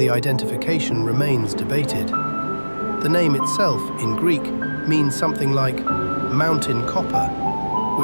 identification remains debated. The name itself, in Greek, means something like mountain copper,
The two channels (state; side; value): inverted; both; correlation -1.00